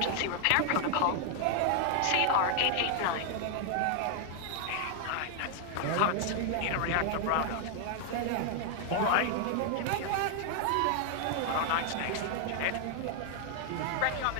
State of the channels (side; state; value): both; different; correlation 0.00